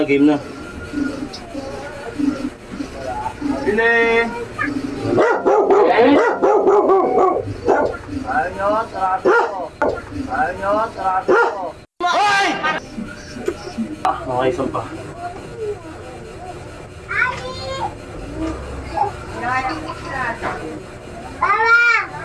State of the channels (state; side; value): identical; both; correlation 1.00